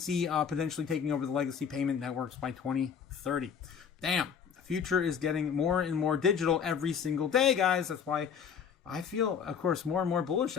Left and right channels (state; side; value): quieter; right; 7.2 dB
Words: potentially taking over the legacy payment networks by 2030. Damn, the future is getting more and more digital every single day, guys. That's why I feel, of course, more and more bullish